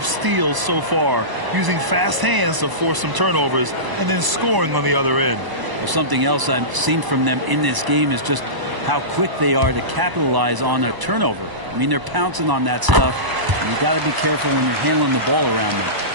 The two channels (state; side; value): late; left; 1.0 ms